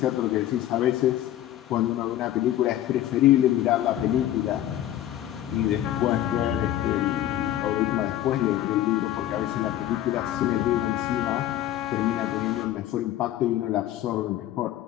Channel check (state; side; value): quieter; right; 13.0 dB